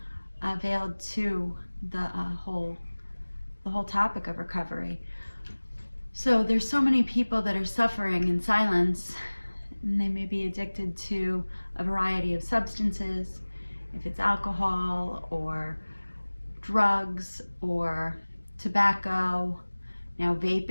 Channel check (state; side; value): inverted; both; correlation -1.00